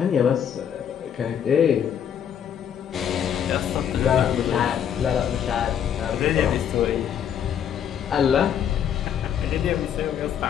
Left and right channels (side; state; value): right; quieter; 8.8 dB